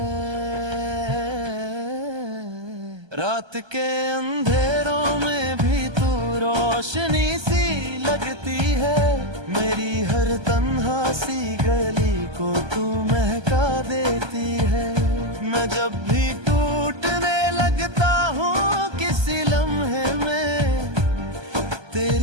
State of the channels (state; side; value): late; left; 1.3 ms